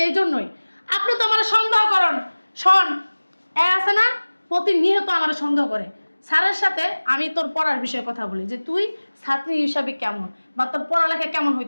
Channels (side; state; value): both; inverted; correlation -1.00